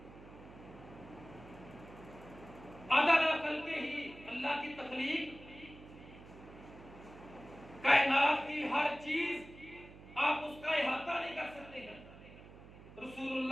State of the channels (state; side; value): noise; right; hum, 18 dB below the sound